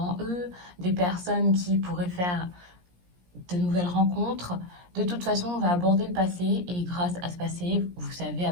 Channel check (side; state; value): left; late; 17 ms